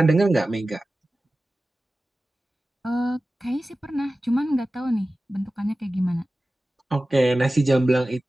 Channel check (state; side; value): normal; both; correlation 0.96